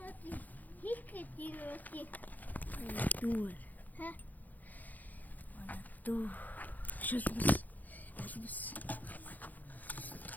Дуur. Хэ? Дуу. Шүлбэс. Албэс.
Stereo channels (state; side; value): late; right; 0.082 ms